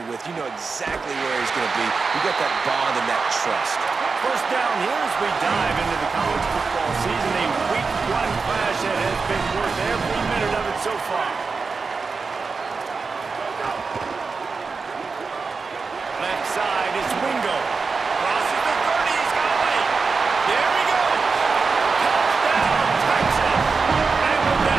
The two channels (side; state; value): left; quieter; 4.6 dB